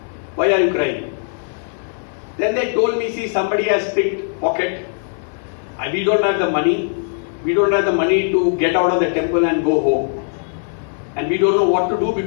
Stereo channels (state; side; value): silent; right; digital silence